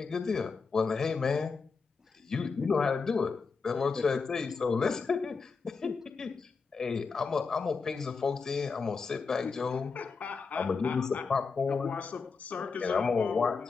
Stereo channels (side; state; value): right; quieter; 4.9 dB